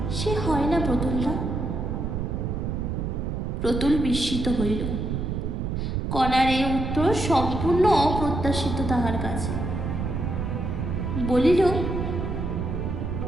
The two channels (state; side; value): noise; right; rumble, 2 dB below the sound